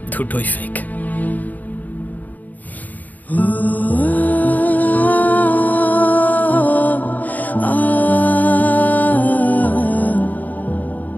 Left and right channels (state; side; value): late; right; 0.080 ms